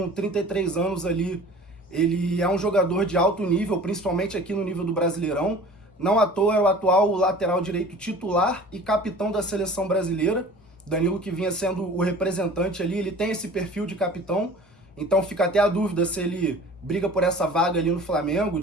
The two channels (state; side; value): normal; both; correlation 0.43